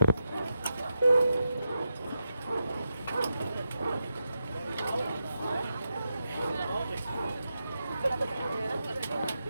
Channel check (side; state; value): both; inverted; correlation -0.88